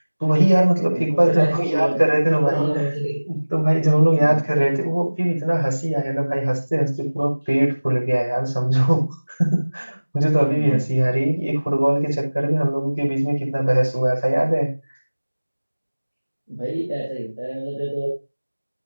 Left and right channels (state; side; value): inverted; both; correlation -1.00